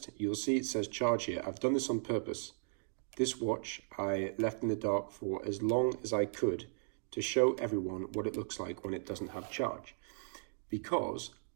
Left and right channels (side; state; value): left; silent; digital silence